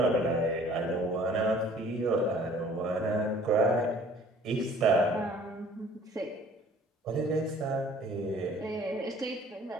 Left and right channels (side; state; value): both; normal; correlation 0.53